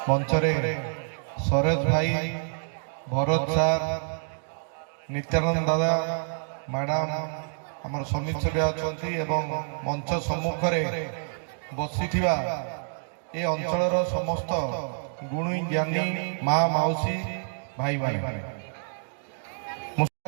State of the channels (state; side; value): silent; left; digital silence